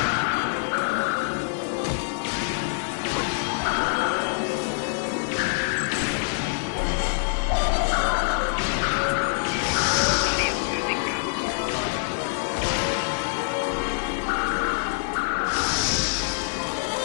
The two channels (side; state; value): right; silent; digital silence